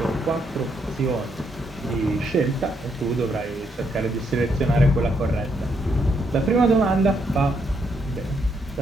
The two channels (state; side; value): normal; both; correlation 0.76